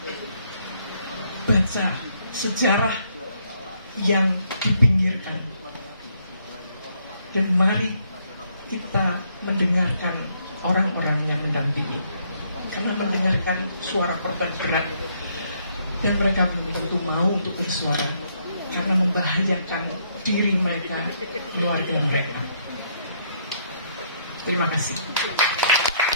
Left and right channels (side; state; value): both; inverted; correlation -0.71